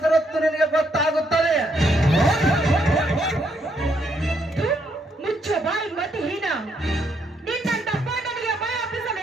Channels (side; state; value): both; normal; correlation 0.74